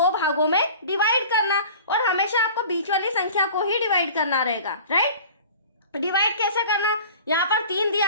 भागों में डिवाइड करना और हमेशा आपको बीच वाली संख्या को ही डिवाइड करना रहेगा, राइट। डिवाइड कैसे करना? यहाँ पर 3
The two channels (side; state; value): both; inverted; correlation -0.42